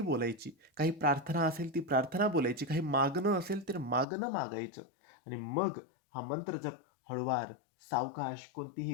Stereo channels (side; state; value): right; drops out; at 4.0 s